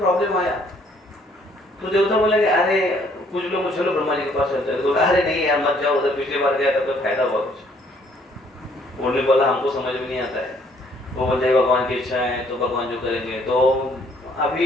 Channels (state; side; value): normal; both; correlation 0.64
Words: आया तो देवता बोलेंगे अरे कुछ लोग चलो ब्रह्मा जी के पास चलते हैं, तो अरे नहीं यार मत जाओ उधर, पिछली बार गया था तो फायदा हुआ कुछ। उन्होंने बोला हमको समझ में नहीं आता है, वो बोलते भगवान की इच्छा है तो भगवान जो करेंगे। तो